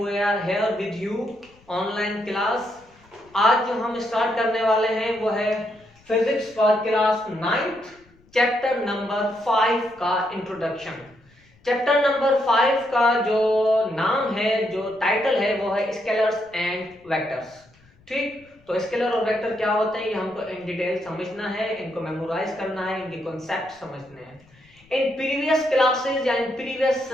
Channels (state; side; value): noise; left; rumble, 30 dB below the sound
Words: are here with you online class. आज जो हम start करने वाले हैं वो है physics for class 9th chapter number 5 का इंट्रोडक्शन। चैप्टर नंबर 5 का जो नाम है, जो टाइटल है वो है स्केलर्स एंड वेक्टर्स। ठीक, तो स्केलर और वेक्टर क्या होते हैं ये हमको इन डिटेल समझना है, इनको मेमोराइज करना है, इनके कॉन्सेप्ट समझने हैं। In previous classes and previous